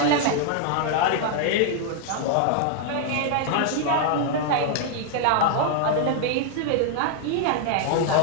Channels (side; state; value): both; different; correlation 0.00